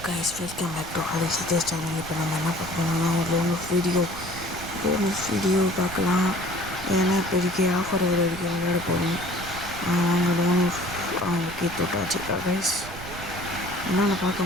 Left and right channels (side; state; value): right; noise; rumble, 13 dB below the sound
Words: guys, welcome back to Harisidesh channel. இப்போ நம்ம என்ன பார்க்கணும்னா ஒரு வீடியோ பார்க்கலாம். ஏன்னா இப்போதைக்கு ஆஃபர் வரைக்கும் விளையாட போகிறோம். அவங்க ஓகே தொட்டாச்சு கைஸ். என்னென்ன